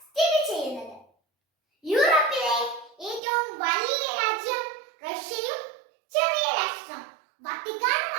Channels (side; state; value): left; drops out; at 3.2 s